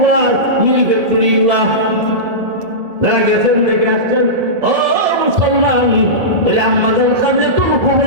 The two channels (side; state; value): left; late; 1.7 ms